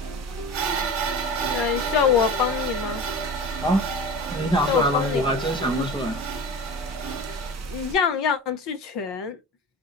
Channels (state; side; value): normal; both; correlation 0.33